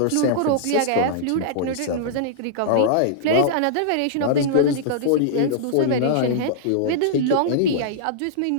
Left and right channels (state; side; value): different; both; correlation -0.02